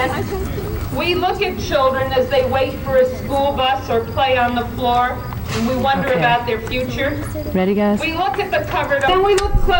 We look at children as they wait for a school bus or play on the floor, and we wonder about their future. Ready, guys? We look at the covered, and we look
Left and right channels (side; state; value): both; identical; correlation 1.00